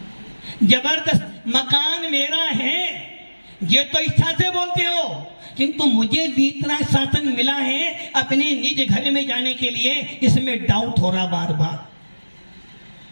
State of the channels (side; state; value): both; inverted; correlation -1.00